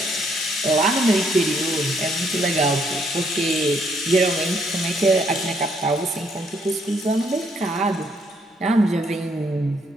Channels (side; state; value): both; normal; correlation 0.70